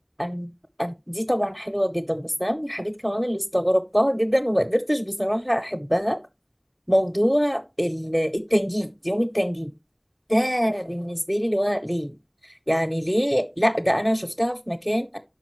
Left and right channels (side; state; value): both; identical; correlation 1.00